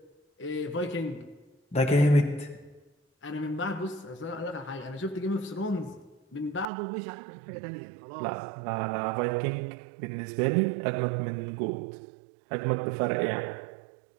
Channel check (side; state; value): left; drops out; at 6.7 s